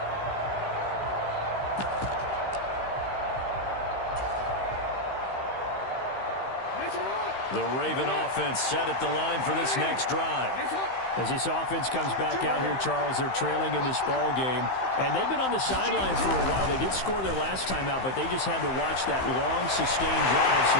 The Raven offense set at the line for this next drive. As this offense comes back out here, Charles, they're trailing in this ball game. And they've been on the sidelines for a while. They did score their last time out, but they just had to watch that long, sustained drive, so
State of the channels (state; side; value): late; right; 15 ms